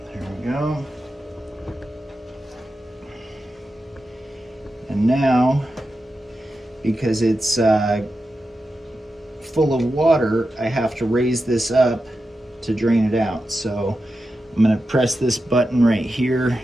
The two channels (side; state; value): both; normal; correlation 0.90